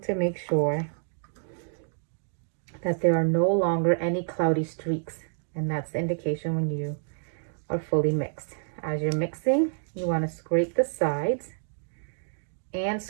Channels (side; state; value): left; silent; digital silence